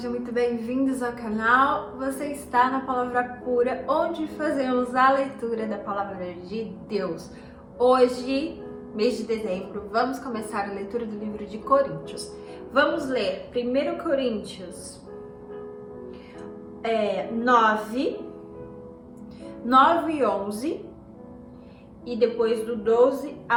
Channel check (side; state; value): both; identical; correlation 1.00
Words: muito bem-vindos ao canal. Você está na Palavra Pura, onde fazemos a leitura da Palavra de Deus. Hoje, mês de dezembro, vamos começar a leitura do livro de Coríntios. Vamos ler 1 Coríntios 9 e 11 e depois do 12